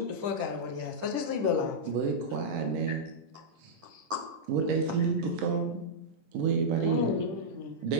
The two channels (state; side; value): late; left; 10 ms